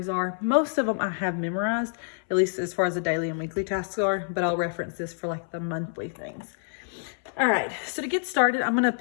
are. Most of them I have memorized, at least as far as the daily and weekly tasks are, but I'll reference this for like the monthly things. All right, so to get started, I'm going to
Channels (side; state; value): right; silent; 60 dB below the other